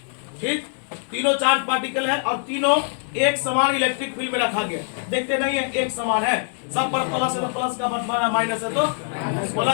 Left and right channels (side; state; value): right; silent; digital silence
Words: ठीक, तीनों चार्ज पार्टिकल है और तीनों एक समान इलेक्ट्रिक फील्ड में रखा गया। देखते नहीं है एक समान है, सब पर प्लस है तो प्लस का बटवारा, माइनस है तो बोला